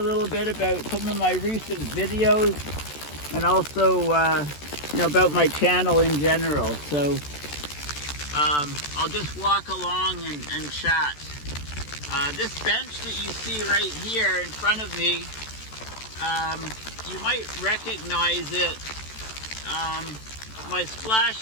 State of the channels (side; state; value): right; late; 14 ms